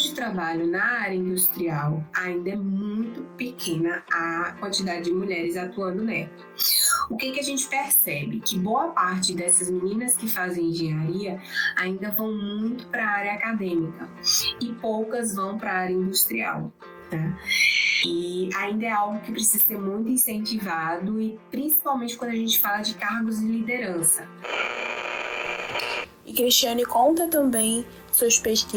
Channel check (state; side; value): identical; both; correlation 1.00